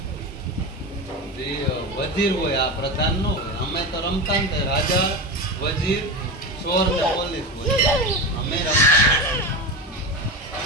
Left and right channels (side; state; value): both; normal; correlation 0.22